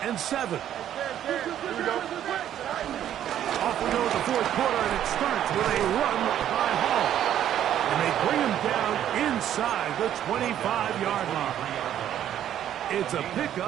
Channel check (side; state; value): left; quieter; 10.9 dB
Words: and 7. Here we go. Off we go to the fourth quarter, and it starts with a run by Hall. And they bring him down inside the 25-yard line. It's a